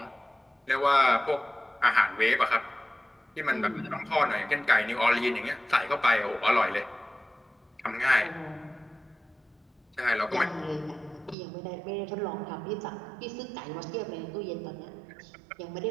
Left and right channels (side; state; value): left; drops out; at 11.4 s